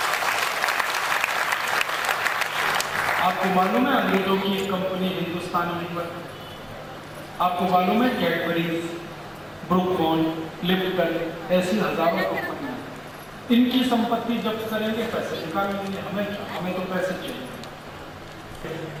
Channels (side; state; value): both; identical; correlation 1.00